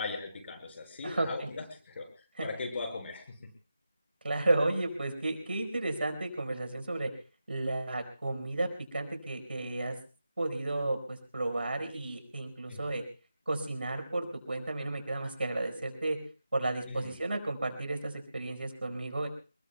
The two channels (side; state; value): both; inverted; correlation -0.89